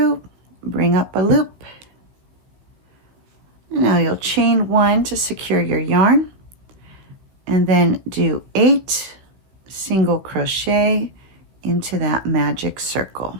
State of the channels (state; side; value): late; left; 16 ms